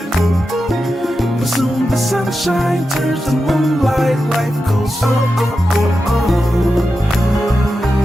But soon the sunshine turns to moonlight, life goes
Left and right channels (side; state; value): both; normal; correlation 0.90